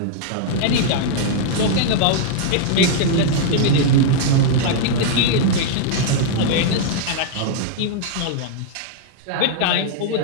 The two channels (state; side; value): different; both; correlation -0.01